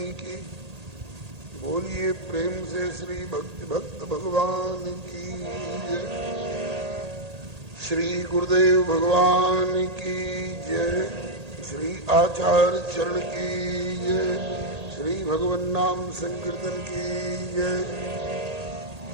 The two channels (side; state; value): left; late; 1.8 ms